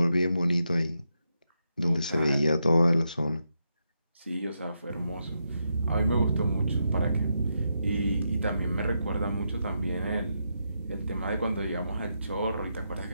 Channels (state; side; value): inverted; both; correlation -0.83